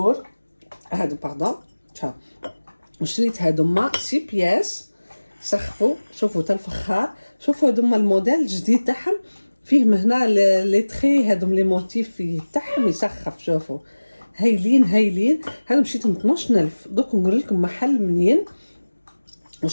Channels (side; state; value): both; inverted; correlation -1.00